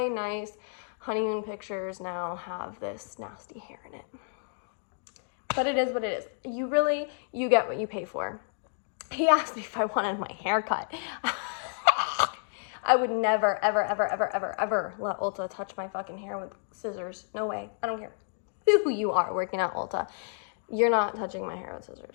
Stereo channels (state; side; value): silent; right; digital silence